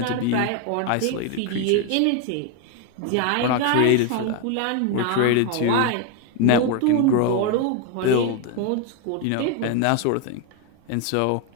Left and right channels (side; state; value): both; different; correlation 0.01